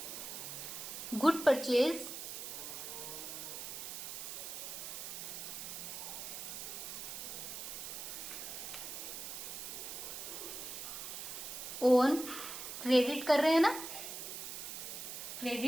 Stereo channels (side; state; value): right; noise; hiss, 7 dB below the sound